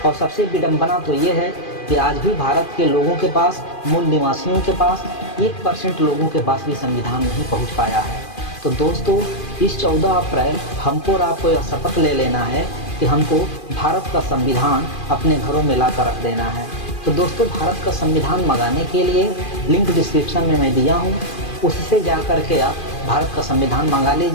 और सबसे विडंबना तो ये है कि आज भी भारत के लोगों के पास, मूल निवासियों के पास 1% लोगों के पास भी संविधान नहीं पहुंच पाया है। तो दोस्तों, इस 14 अप्रैल हमको और आपको यह शपथ ले लेना है कि हमको भारत का संविधान अपने घरों में ला कर रख देना है। तो दोस्तों, भारत का संविधान मंगाने के लिए लिंक डिस्क्रिप्शन में मैं दिया हूँ, उससे जा कर के आप भारत का संविधान मंगा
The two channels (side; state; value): right; late; 2.4 ms